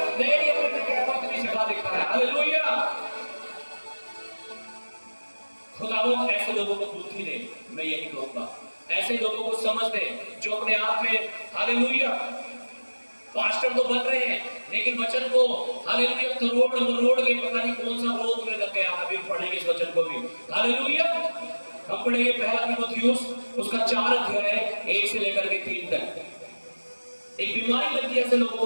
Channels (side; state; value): both; inverted; correlation -1.00